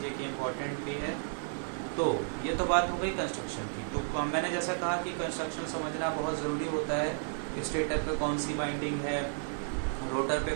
कि इम्पॉर्टेंट भी है। तो ये तो बात हो गई कंस्ट्रक्शन की। तो मैंने जैसा कहा कि कंस्ट्रक्शन समझना बहुत ज़रूरी होता है। स्टेटर पे कौन सी वाइंडिंग है, रोटर पे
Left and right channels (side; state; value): left; silent; 56 dB below the other